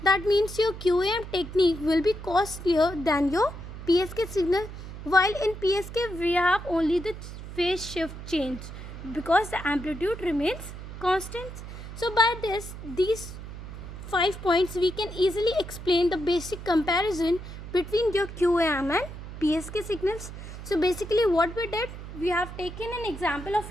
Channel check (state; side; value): noise; right; hum, 11 dB below the sound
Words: That means your QAM technique will be costlier than your PSK signal. While in PSK we have only the phase shift change because the amplitude remains constant. So by these 5 points we can easily explain the basic comparison between your QAM and PSK signals. So basically what we did, we have taken an example of